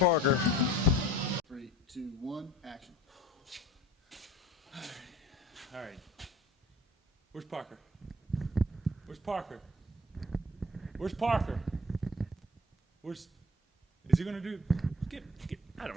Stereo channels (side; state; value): both; normal; correlation 0.46